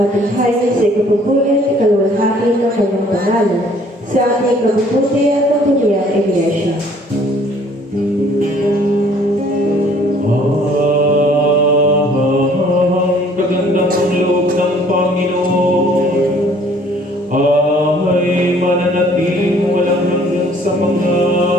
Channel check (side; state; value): both; normal; correlation 0.57